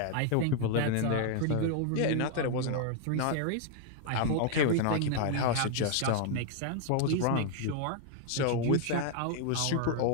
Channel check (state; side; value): different; both; correlation 0.00